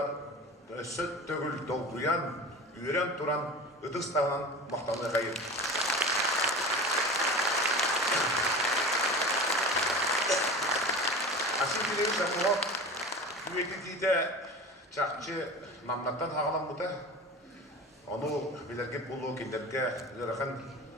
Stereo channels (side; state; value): both; normal; correlation 0.33